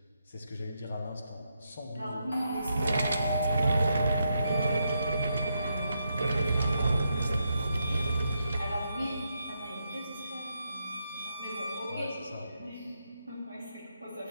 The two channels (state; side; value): inverted; both; correlation -0.81